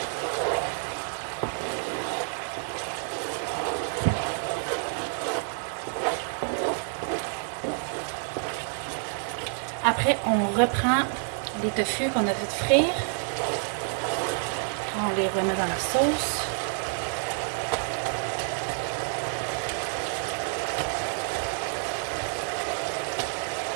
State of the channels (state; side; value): silent; left; 59 dB below the other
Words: Après, on reprend les tofu qu'on a fait frire. On les remet dans la sauce.